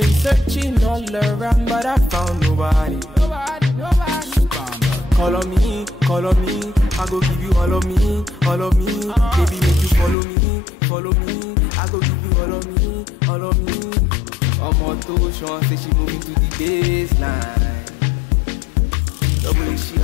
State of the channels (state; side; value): drops out; right; at 10.2 s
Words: searching all around but I found nobody. Nobody. Call on me, I go give you all of me, all of me. Baby, make you follow me, follow me. I go give you all of me, all of me. Omoto Sean say she moving to the baseline. The way she